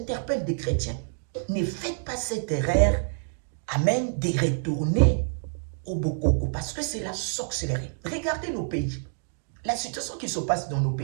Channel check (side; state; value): left; silent; digital silence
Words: des chrétiens. Ne faites pas cette erreur, amen, de retourner au Bokoko, parce que c'est la sorcellerie. Regardez nos pays. La situation qui se passe dans nos